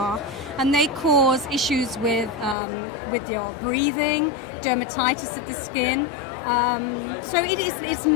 and they cause issues with your breathing, dermatitis of the skin. So it's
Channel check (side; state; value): right; drops out; at 2.6 s